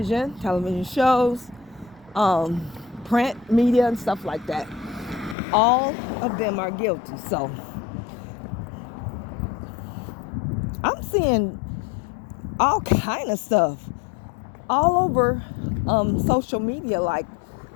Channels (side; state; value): right; drops out; at 5.4 s